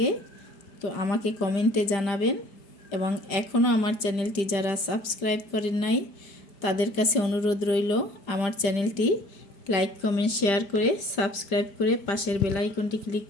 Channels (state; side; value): late; right; 5.1 ms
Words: তো আমাকে কমেন্টে জানাবেন, এবং এখনও আমার চ্যানেলটি যারা সাবস্ক্রাইব করেন নাই তাদের কাছে অনুরোধ রইল আমার চ্যানেলটি লাইক কমেন্ট শেয়ার করে সাবস্ক্রাইব করে পাশের বেল আইকনটি ক্লিক